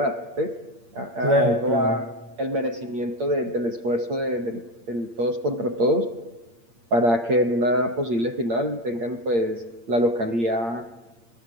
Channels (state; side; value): late; left; 8.6 ms